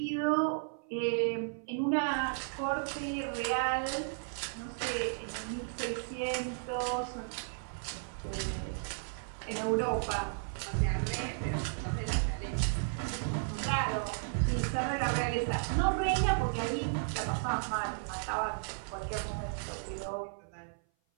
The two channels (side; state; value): left; silent; 55 dB below the other